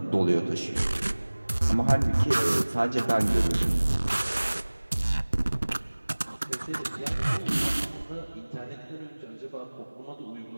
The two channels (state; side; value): inverted; both; correlation -1.00